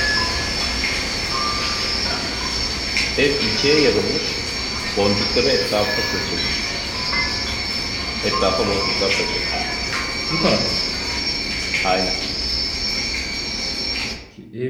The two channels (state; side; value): identical; both; correlation 1.00